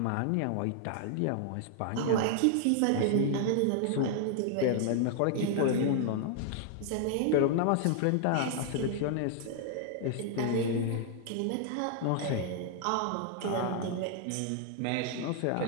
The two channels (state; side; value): different; both; correlation 0.00